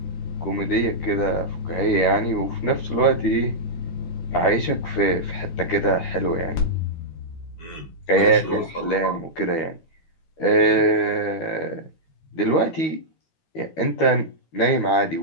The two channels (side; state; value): right; late; 13 ms